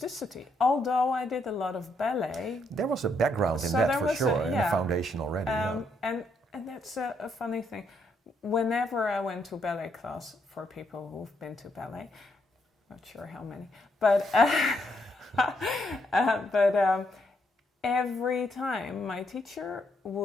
Although I did a lot of ballet. There was a background in that for sure, in the foundation already. And that's a funny thing. Whenever I went to ballet class, for people who've been to ballet, not sure how many, but every time my teacher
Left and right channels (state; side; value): normal; both; correlation 0.75